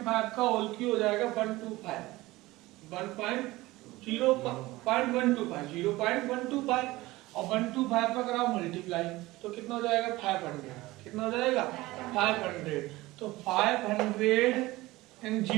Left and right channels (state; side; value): quieter; left; 19.2 dB